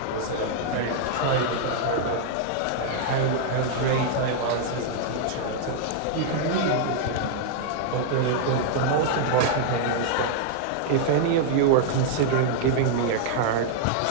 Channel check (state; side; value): different; both; correlation -0.01